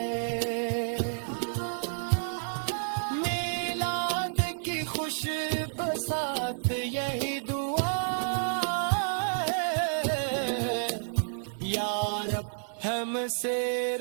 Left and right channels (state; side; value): silent; left; 58 dB below the other